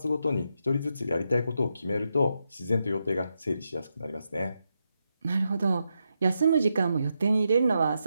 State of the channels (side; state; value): both; inverted; correlation -0.84